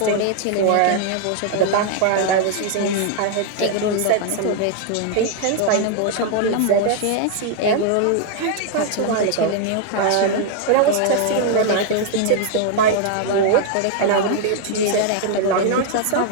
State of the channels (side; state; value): both; different; correlation 0.00